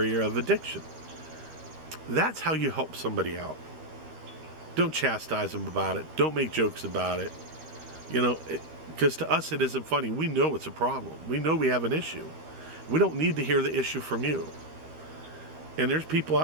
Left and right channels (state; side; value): late; left; 13 ms